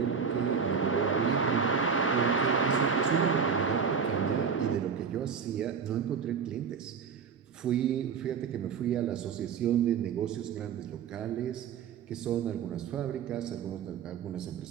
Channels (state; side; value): quieter; left; 6.5 dB